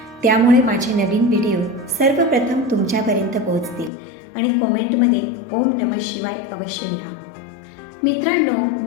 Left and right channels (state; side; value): drops out; right; at 3.9 s